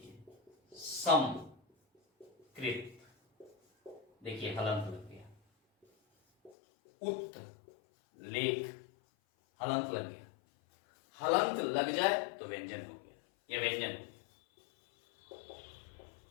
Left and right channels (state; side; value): drops out; right; at 6.6 s